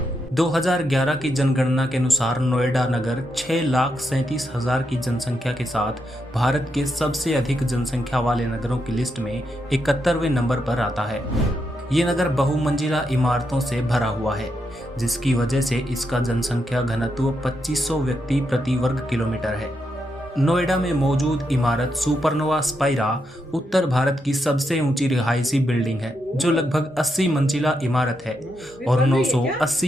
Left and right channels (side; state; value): both; normal; correlation 0.83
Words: 2011 की जनगणना के अनुसार नोएडा नगर 6,37,000 की जनसंख्या के साथ भारत के सबसे अधिक जनसंख्या वाले नगरों की लिस्ट में 71वें नंबर पर आता है। ये नगर बहुमंजिला इमारतों से भरा हुआ है, जिसकी वजह से इसका जनसंख्या घनत्व 2500 व्यक्ति प्रति वर्ग किलोमीटर है। नोएडा में मौजूद इमारत सुपरनोवा स्पाइरा उत्तर भारत की सबसे ऊंची रिहायशी बिल्डिंग है, जो लगभग 80 मंजिला इमारत है और